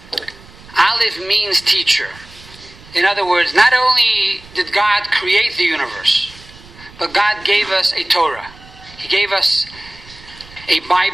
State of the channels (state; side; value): noise; right; rumble, 22 dB below the sound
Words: Aleph means teacher. In other words, not only did God create the universe, but God gave us a Torah. He gave us a